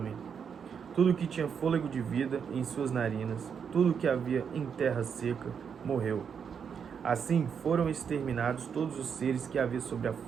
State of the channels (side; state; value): left; quieter; 7.0 dB